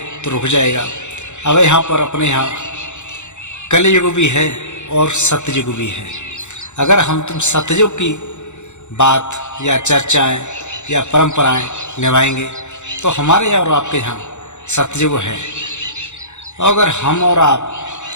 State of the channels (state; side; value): late; right; 0.84 ms